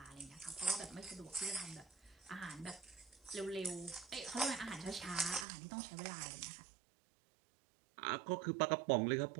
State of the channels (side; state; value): left; drops out; at 5.5 s